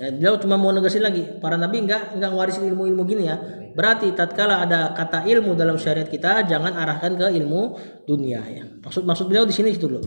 beliau cuma mau negasin lagi, para nabi enggak ngewarisin ilmu-ilmu gini ya. Berarti tatkala ada kata ilmu dalam syariat kita jangan arahkan ke ilmu dunia ya. Maksud beliau di sini itu dulu.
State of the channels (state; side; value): inverted; both; correlation -1.00